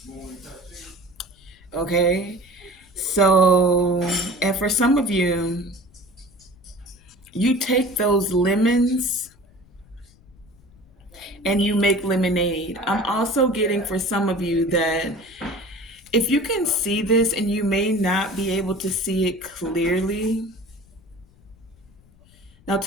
Okay? So, and for some of you, you take those lemons and you make lemonade. I'm also getting for some of you that if you can see this, and you may not be able to see it clearly, now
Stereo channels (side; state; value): left; noise; rumble, 28 dB below the sound